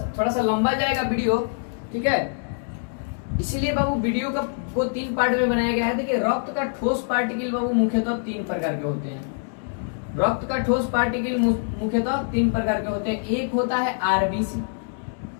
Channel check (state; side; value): silent; right; digital silence